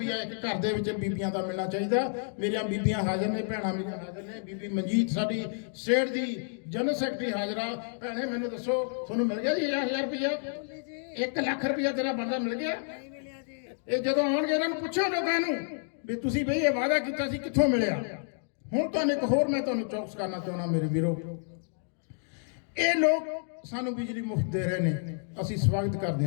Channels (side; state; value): right; silent; digital silence